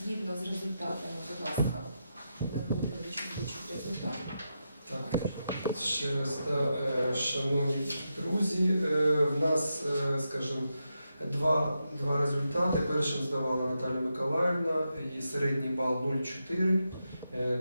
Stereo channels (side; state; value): both; inverted; correlation -0.86